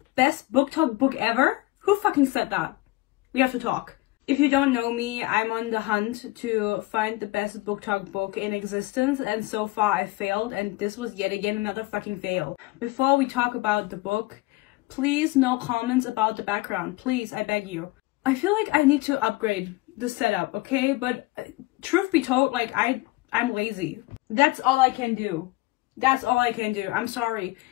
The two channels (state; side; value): quieter; right; 20.4 dB